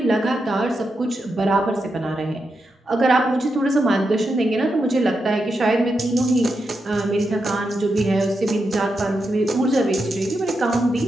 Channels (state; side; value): normal; both; correlation 0.86